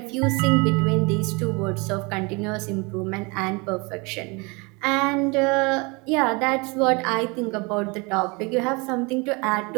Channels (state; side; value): quieter; left; 28.4 dB